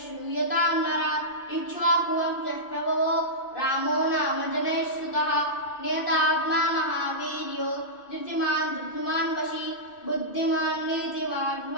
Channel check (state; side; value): late; right; 2.6 ms